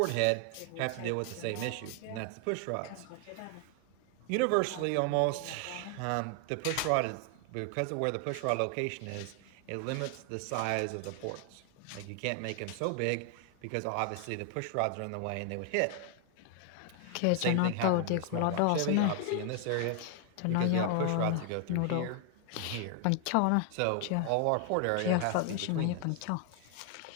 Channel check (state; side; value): different; both; correlation 0.00